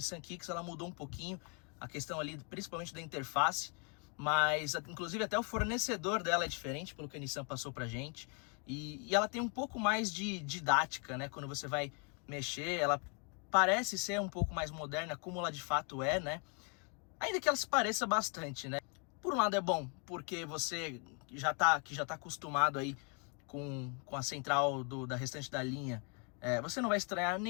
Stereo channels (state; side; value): quieter; right; 37.2 dB